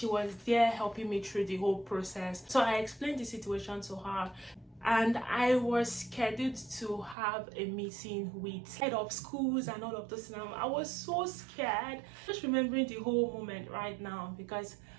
was there helping me through the whole process. So I explained the situation to her. And I was scheduled to have a meeting with head of schools and all of this. Now I was so scared, just remembering the whole moment right now, because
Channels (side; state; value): left; drops out; at 7.2 s